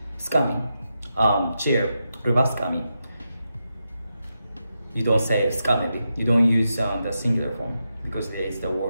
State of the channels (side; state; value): both; inverted; correlation -0.87